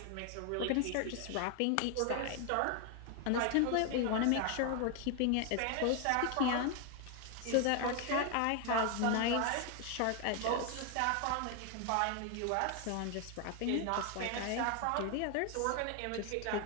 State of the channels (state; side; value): different; both; correlation 0.01